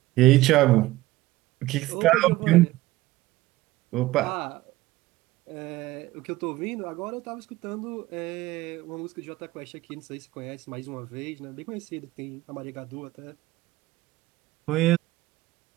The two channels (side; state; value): left; quieter; 17.7 dB